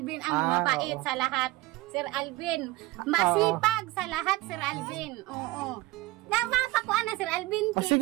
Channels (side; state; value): left; quieter; 19.4 dB